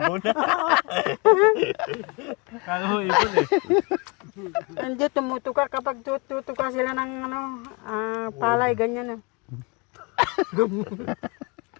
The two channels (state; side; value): quieter; right; 30.1 dB